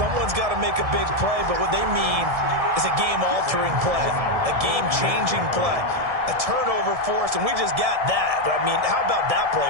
got to make a big play, but what they mean is a game-altering play, a game-changing play, a turnover force, and we just got that. I mean, how about that play,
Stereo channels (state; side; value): late; left; 1.7 ms